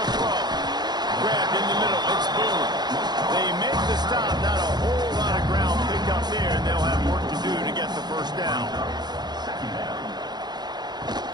throw. Grabbed in the middle. It's Boone. They make the stop. Not a whole lot of ground picked up there, and they'll have work to do to get the first down.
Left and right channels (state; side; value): late; left; 0.20 ms